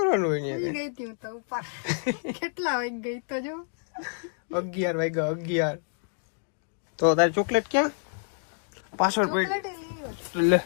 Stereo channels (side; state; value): right; silent; 59 dB below the other